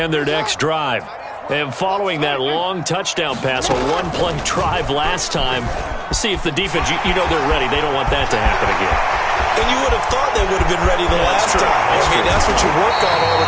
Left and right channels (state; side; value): identical; both; correlation 1.00